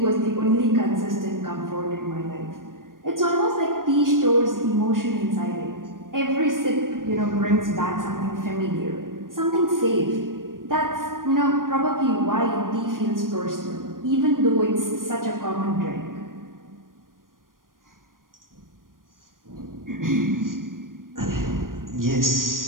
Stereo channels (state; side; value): late; left; 0.90 ms